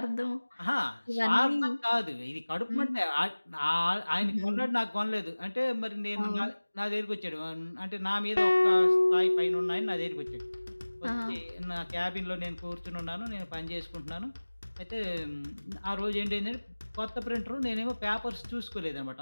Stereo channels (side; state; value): both; inverted; correlation -1.00